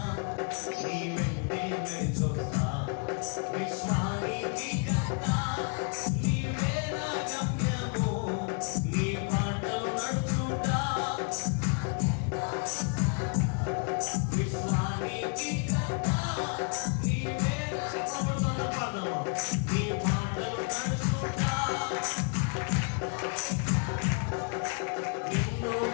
నీ వెంటే నడిచొస్తా. విశ్వానికి కర్త నీవే నా గమ్యము, నీ మాటలు నడుచుట. విశ్వానికి కర్త నీవే చెప్పబడుతున్న పాదము, నీ మాటలు నడుచుట. నిన్ను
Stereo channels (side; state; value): right; quieter; 38.6 dB